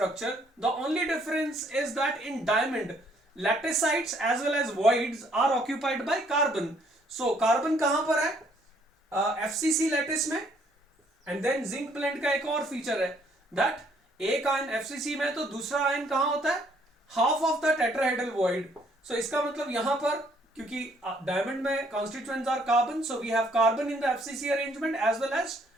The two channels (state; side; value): normal; both; correlation 0.65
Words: The only difference is that in diamond, laticites as well as voids are occupied by carbon. So carbon कहां पर है? FCC lattice में. And then zinc blend का एक और feature है that एक ion FCC में तो दूसरा आयन कहां होता है? Half of the tetrahedral void. So इसका मतलब यहां पर क्योंकि डायमंड में constituents are carbon, so we have carbon in the FCC arrangement as well as